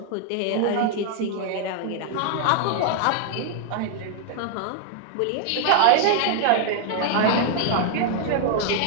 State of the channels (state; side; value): different; both; correlation 0.00